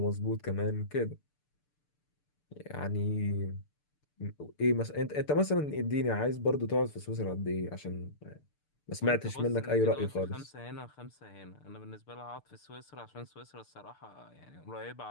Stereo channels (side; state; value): right; late; 6.8 ms